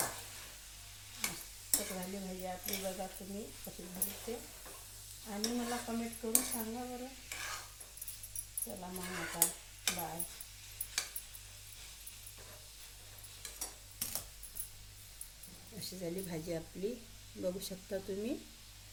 मस्त झाली भाजी आपली. बघा तुम्ही कशी झाली ते आणि मला कमेंट करून सांगा बरं. चला मग आता बाय. अशी झाली भाजी आपली. बघू शकता तुम्ही.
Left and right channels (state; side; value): identical; both; correlation 1.00